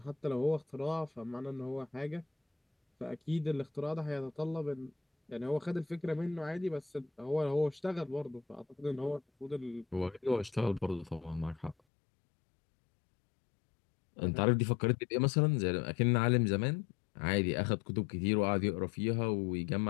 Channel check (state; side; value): drops out; right; at 11.8 s